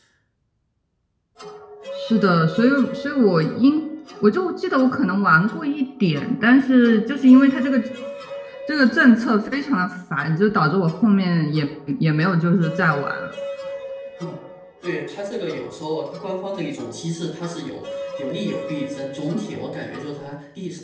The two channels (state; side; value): identical; both; correlation 1.00